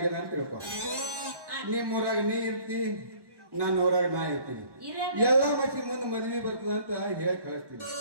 ಅಂತ ತಿಳ್ಕೊ. ನಿಮ್ಮೂರಾಗ ನೀ ಇರ್ತಿ, ನನ್ನ ಊರಾಗ ನಾ ಇರ್ತೀನಿ. ಎಲ್ಲಾ ಮಸಿ ಮುಂದೆ ಮದ್ವಿ ಬರ್ತದ ಅಂತ ಹೇಳಿ ಕಳಿಸ್ತೀನಿ.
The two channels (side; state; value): left; late; 1.1 ms